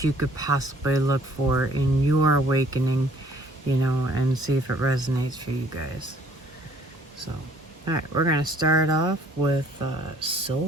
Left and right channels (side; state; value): both; normal; correlation 0.59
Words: you could possibly look for in your awakening, and see if it resonates for you guys. So, alright, we're going to start off with